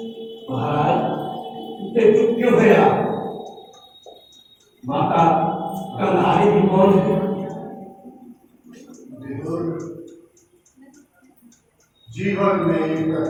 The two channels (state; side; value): identical; both; correlation 1.00